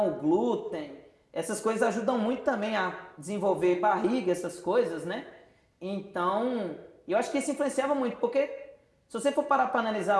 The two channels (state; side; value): identical; both; correlation 1.00